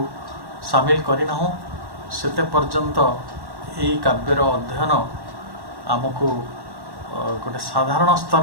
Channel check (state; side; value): late; left; 1.1 ms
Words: সামিল করিনা সেতে পর্যন্ত এই কাব্যর অধ্যয়ন আমକୁ गोटे साधारण